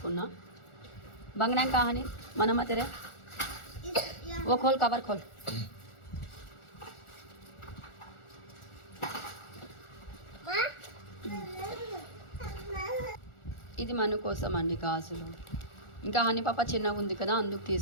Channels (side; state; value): right; late; 1.4 ms